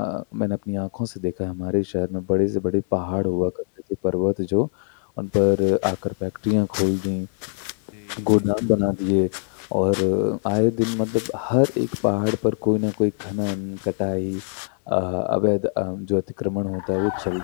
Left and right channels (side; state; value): right; silent; 63 dB below the other